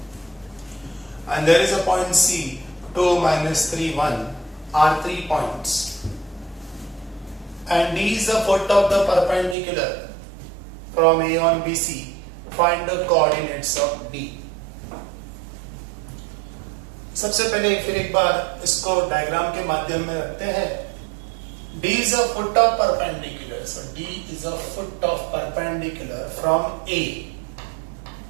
And there is a point C, 2, minus 3, 1 are 3 points. And D is the foot of the perpendicular from A on BC. Find the coordinates of D. सबसे पहले फिर एक बार इसको diagram के माध्यम में रखते हैं D is a foot of perpendicular. So D is a foot of perpendicular from A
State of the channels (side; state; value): left; drops out; at 9.6 s